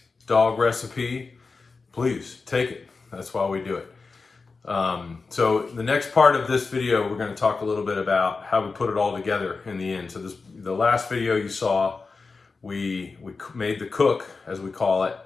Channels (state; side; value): quieter; right; 4.3 dB